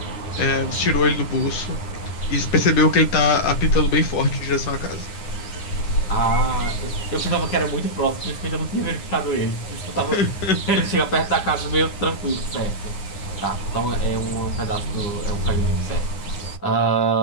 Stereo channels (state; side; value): late; right; 9.9 ms